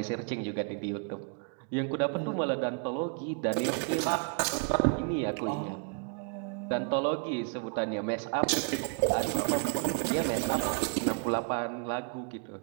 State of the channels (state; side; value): quieter; left; 34.0 dB